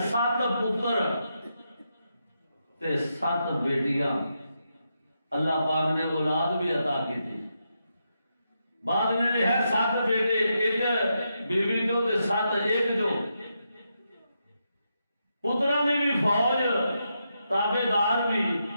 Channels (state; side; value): inverted; both; correlation -0.84